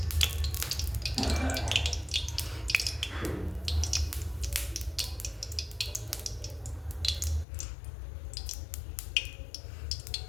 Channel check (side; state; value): right; drops out; at 7.5 s